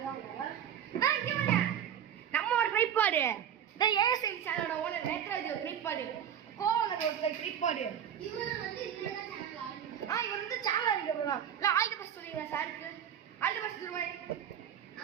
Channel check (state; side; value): quieter; left; 9.2 dB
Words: நான் இங்கே வரேன் நம்மளோட ட்ரைபாடு இந்த ஏஎஸ்என் சேனலோட ஓனர் நேத்ராஜி ஒரு ட்ரைபாடு கோவலர் ஒரு ட்ரைபாடு இவர் வந்து சேனல் ஆரம்பிக்க போகிறோம். இல்லை ஆல் தி பெஸ்ட் சொல்லிடுறேன் சாருக்கு. ஆல் தி பெஸ்ட் சொல்லுவேன்.